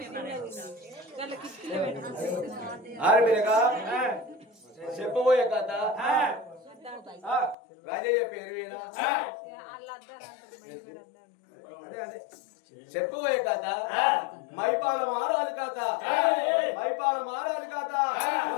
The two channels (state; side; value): drops out; right; at 7.6 s